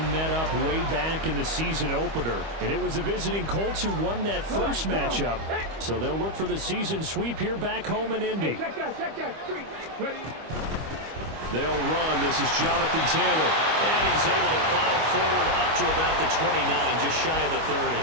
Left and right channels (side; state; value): left; late; 25 ms